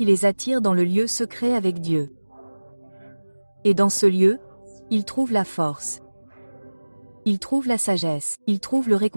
les attire dans le lieu secret avec Dieu. Et dans ce lieu, ils trouvent la force. Ils trouvent la sagesse, ils trouvent le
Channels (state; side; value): inverted; both; correlation -1.00